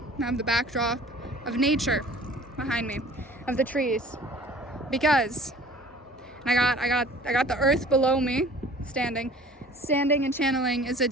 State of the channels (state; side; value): normal; both; correlation 0.47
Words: have the backdrop of nature behind me, of the trees, because I got the earth below me, standing and channeling is a